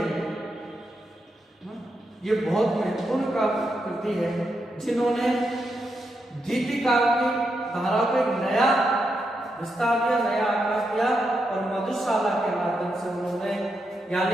ये बहुत महत्वपूर्ण काव्य कृति है, जिन्होंने गीतिकार की धारा को एक नया विस्तार दिया, नया आकार दिया और मधुशाला के माध्यम से उन्होंने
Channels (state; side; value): normal; both; correlation 0.84